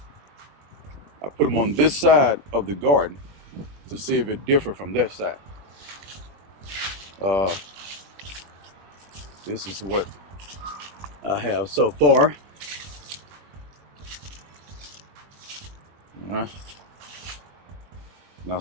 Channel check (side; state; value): left; late; 20 ms